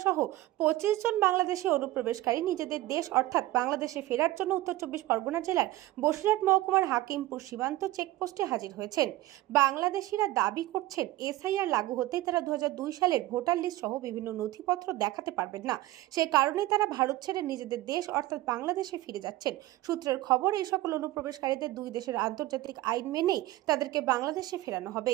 সহ 25 জন বাংলাদেশি অনুপ্রবেশকারী নিজেদের দেশ অর্থাৎ বাংলাদেশে ফেরার জন্য উত্তর 24 পরগনা জেলার বসিরহাট মহকুমার হাকিমপুর সীমান্ত চেকপোস্টে হাজির হয়েছেন। বাংলাদেশিরা দাবি করছেন এসআইআর লাগু হতে তারা 2002 সালের ভোটার লিস্ট সহ বিভিন্ন নথিপত্র দেখাতে পারবেন না। সেই কারণে তারা ভারত ছেড়ে নিজেদের দেশ অর্থাৎ বাংলাদেশে ফিরে যাচ্ছেন। সূত্রের খবর, এই সকল অনুপ্রবেশকারীদের দুই দেশের আন্তর্জাতিক আইন মেনেই তাদেরকে বাংলাদেশে ফেরানো হবে।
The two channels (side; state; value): left; quieter; 17.0 dB